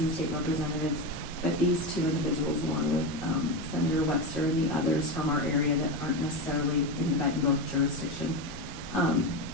and state representatives, but these two individuals, along with, Senator Webster and the others from our area that aren't necessarily in the Bettendorf jurisdiction,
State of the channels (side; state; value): both; normal; correlation 0.17